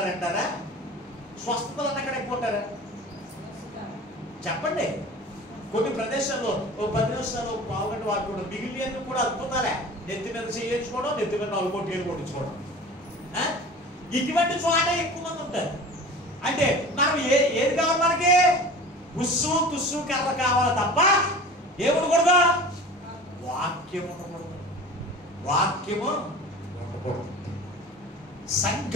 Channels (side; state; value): both; normal; correlation 0.38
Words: స్వస్థతలు అన్న కాడ ఎక్కువ ఉంటారా? చెప్పండి. కొన్ని ప్రదేశాల్లో 10 నిమిషాలు పావుగంట వాటి కూడా మిగిలిన కూడా అద్భుతాలే. నెత్తి మీద చేయించుకోవడం, నెత్తి మీద 4 కోట్లు కొట్టించుకోవడం. ఇటువంటి చోట ఎక్కువ మంది ఉంటారు. అంటే మనం ఏది కావాలి? మనకి ఉస్సు తుస్సు కర్ర కావాలి తప్ప ఏముండకూడదు? వాక్యం ఉండకూడదు.